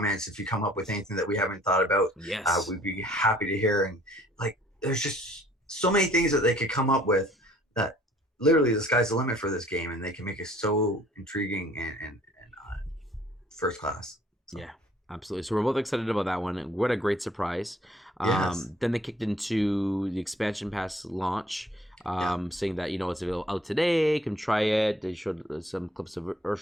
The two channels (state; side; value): normal; both; correlation 0.57